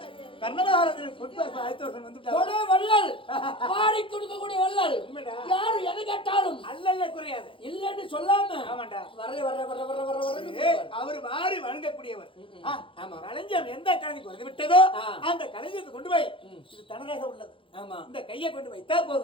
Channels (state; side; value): late; right; 0.25 ms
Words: கர்ணதாரன் வள்ளல் பாடி கொடுக்கக்கூடிய வள்ளல் யாரு எது கேட்டாலும் அல்லல்ல குறையாது இல்லன்னு சொல்லாம ஆமாண்டா வர வர வர வர வர வர அவர் வாரி வணங்கக்கூடியவர். ஆமா களஞ்சியம் எந்த கலைக்கு வந்து விட்டதோ அந்த களஞ்சியத்தை கொண்டு போய் இது தனதாக உள்ளது. ஆமா இந்த கையை கொண்டு வைத்தா